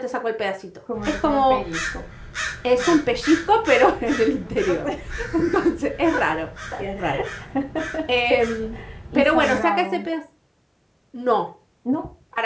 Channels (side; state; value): both; identical; correlation 1.00